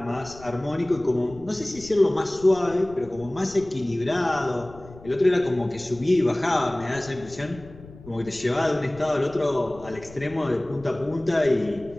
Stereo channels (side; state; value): left; noise; rumble, 19 dB below the sound